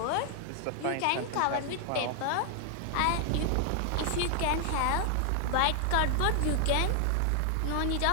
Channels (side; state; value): both; different; correlation 0.00